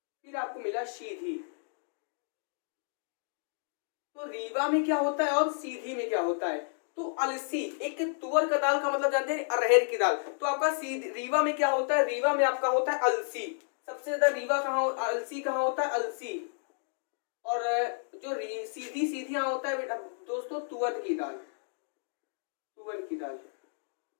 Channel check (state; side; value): silent; right; digital silence